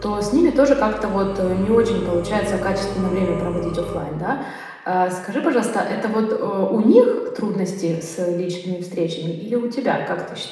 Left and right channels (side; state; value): both; identical; correlation 1.00